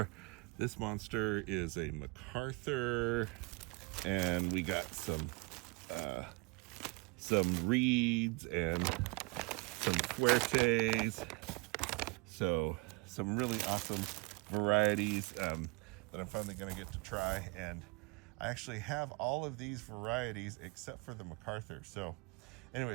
This monster is a MacArthur, and we got some reeds and some fuertes. So some really awesome varieties that I'm finally going to get to try. And I actually have all of these varieties except for the MacArthur. So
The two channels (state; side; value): quieter; left; 27.3 dB